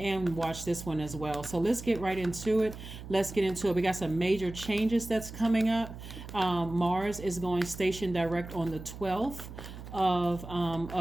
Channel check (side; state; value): right; noise; hum, 12 dB below the sound